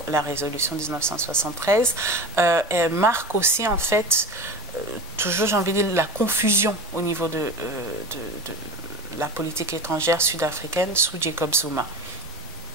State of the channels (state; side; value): normal; both; correlation 0.31